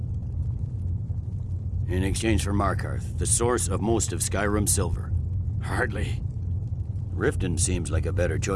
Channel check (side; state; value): both; identical; correlation 1.00